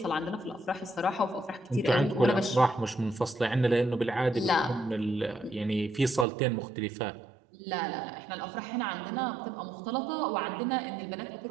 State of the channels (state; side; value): drops out; left; at 6.2 s